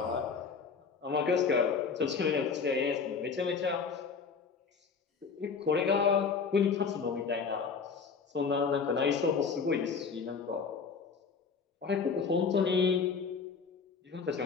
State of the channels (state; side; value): quieter; right; 5.5 dB